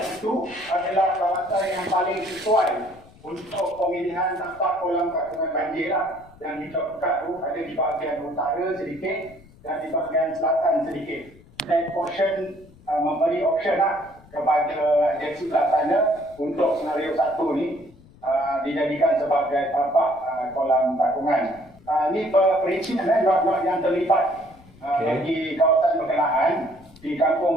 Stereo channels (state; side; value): noise; left; rumble, 25 dB below the sound